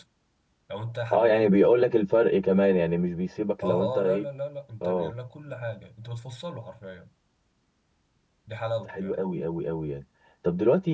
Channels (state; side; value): identical; both; correlation 1.00